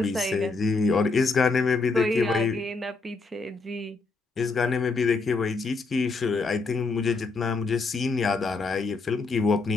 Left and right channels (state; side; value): quieter; right; 3.9 dB